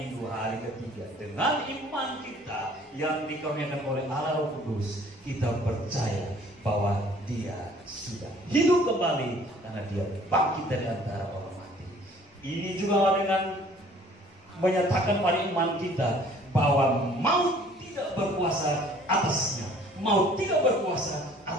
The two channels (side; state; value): both; normal; correlation 0.55